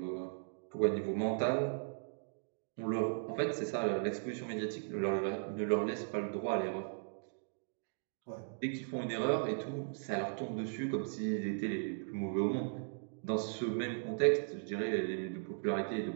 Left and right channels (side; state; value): left; silent; digital silence